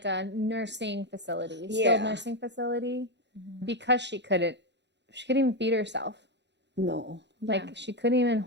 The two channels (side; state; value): left; late; 0.51 ms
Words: a nursing facility, skilled Yeah. nursing facility, because she couldn't even feed herself. No. Like she couldn't even